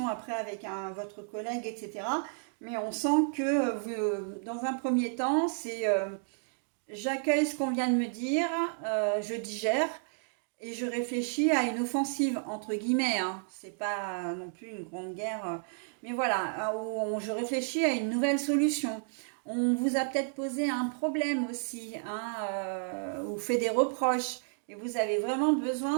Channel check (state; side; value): silent; left; digital silence